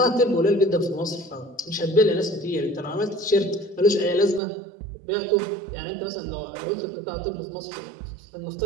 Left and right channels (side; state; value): left; drops out; at 4.4 s